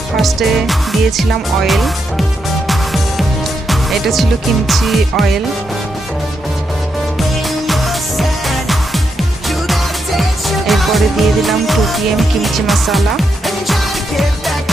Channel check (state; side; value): normal; both; correlation 0.82